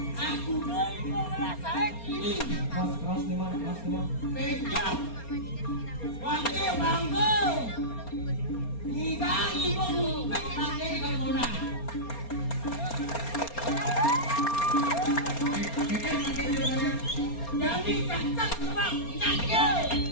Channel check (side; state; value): right; late; 4.3 ms